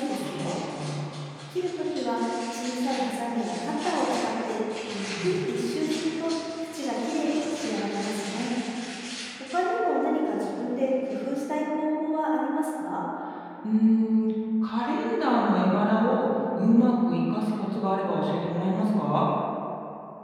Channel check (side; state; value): both; identical; correlation 1.00